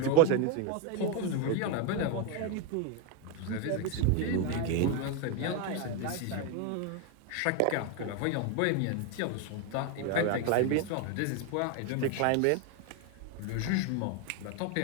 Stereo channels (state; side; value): different; both; correlation 0.02